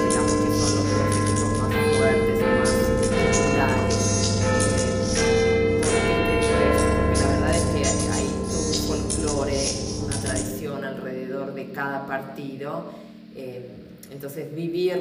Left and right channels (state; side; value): identical; both; correlation 1.00